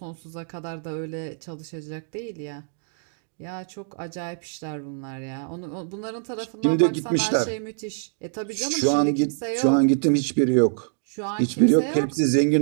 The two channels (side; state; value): left; silent; digital silence